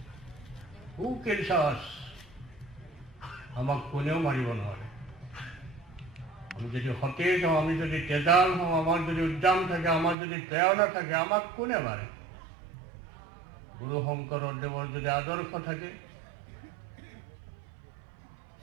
হু কিলছ আছ, আমাক কোনেও মাৰিব নোৱাৰে। আমি যদি সতেজ হওঁ, আমি যদি তেজাল হওঁ, আমাৰ যদি উদ্যাম থাকে, আমাৰ যদি প্ৰেৰণা থাকে, আমাক কোনে মাৰে? গুৰু শংকৰদেৱৰ যদি আদৰ্শ থাকে,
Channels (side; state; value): left; drops out; at 10.2 s